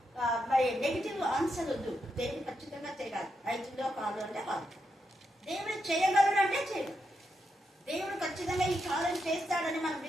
మరి నెగిటివ్ ఆన్సర్ వద్దు. దేవుడు ఖచ్చితంగా చేయగలరు. 5లో కాదు అంటే కాదు, దేవుడు చేయగలడు అంటే చేయగలరు. దేవుడు ఖచ్చితంగా ఈ కార్యం చేస్తాడని మనం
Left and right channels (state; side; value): normal; both; correlation 0.83